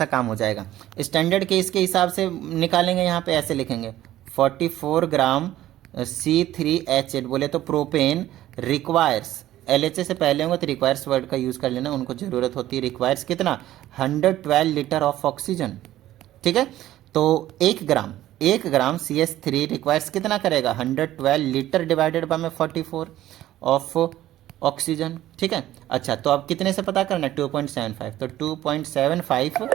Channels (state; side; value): quieter; left; 14.0 dB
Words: काम हो जाएगा। स्टैंडर्ड केस के हिसाब से निकालेंगे, यहाँ पे ऐसे लिखेंगे 44 ग्राम C3H8, बोले तो प्रोपेन रिक्वायर्स, LHA से पहले होंगे तो रिक्वायर्स वर्ड का यूज़ कर लेना, उनको ज़रूरत होती है। रिक्वायर्स कितना 112 लीटर ऑफ ऑक्सीजन, ठीक है। तो 1 ग्राम CH3 रिक्वायर्स कितना करेगा 112 लीटर डिवाइडेड बाय में 44 ऑफ ऑक्सीजन, ठीक है। अच्छा तो अब कितने से पता करना है 2.75, तो 2.75,